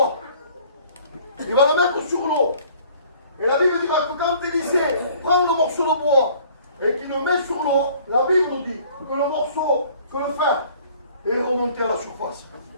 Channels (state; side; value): inverted; both; correlation -0.54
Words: Il va le mettre sur l'eau. Et la Bible dira que quand Élisée prend le morceau de bois et qu'il le met sur l'eau, la Bible nous dit que le morceau, que le fer est remonté à la surface.